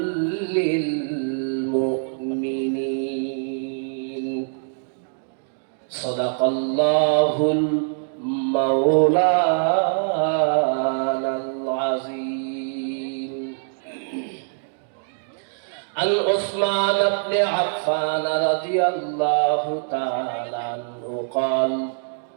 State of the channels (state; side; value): silent; left; digital silence